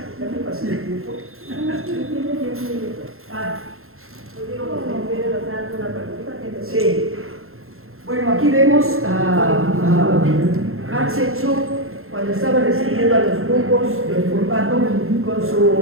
¿Ya me pasé el tiempo? Sí. Bueno, aquí vemos a Hatshepsut cuando estaba recibiendo a los grupos del formato con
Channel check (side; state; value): left; late; 0.61 ms